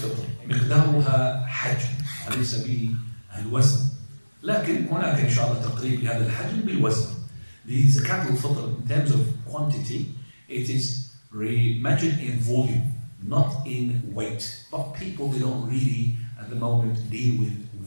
مقدارها حجم وليس به الوزن، لكن هناك ان شاء الله تقريب لهذا الحجم بالوزن. لزكاه الفطر in terms of quantity it is measured in volume, not in weight. But people, they don't really at the moment deal with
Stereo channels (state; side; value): inverted; both; correlation -1.00